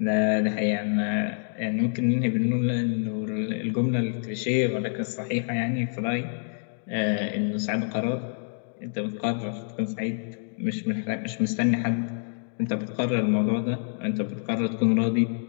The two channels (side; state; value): right; silent; digital silence